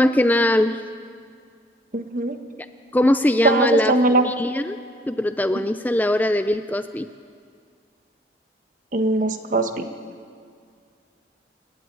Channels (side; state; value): both; normal; correlation 0.60